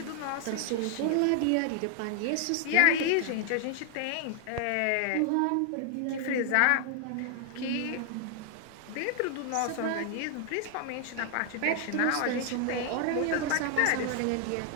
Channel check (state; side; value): different; both; correlation 0.00